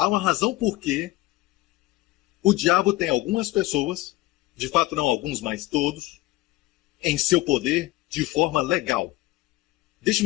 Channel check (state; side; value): quieter; right; 18.4 dB